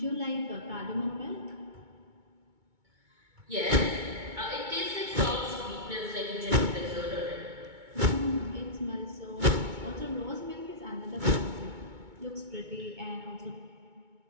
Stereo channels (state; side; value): late; left; 2.2 ms